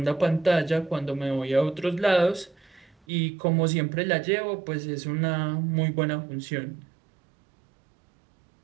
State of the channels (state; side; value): drops out; left; at 3.0 s